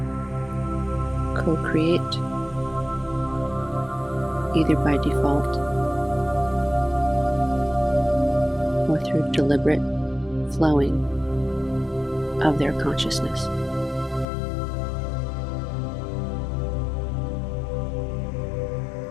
co-create either by default or through deliberate flowing of their consciousness.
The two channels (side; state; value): right; drops out; at 14.2 s